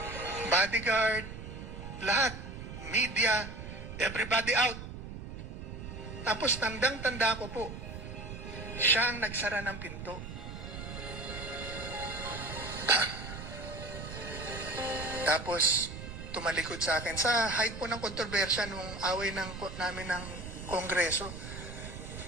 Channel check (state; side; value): noise; right; rumble, 9 dB below the sound